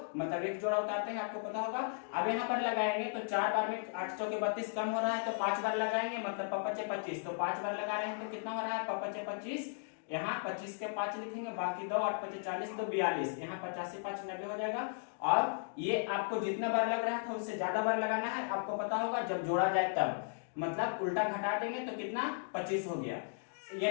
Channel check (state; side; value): silent; right; digital silence